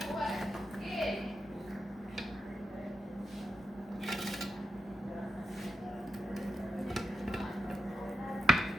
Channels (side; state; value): both; normal; correlation 0.86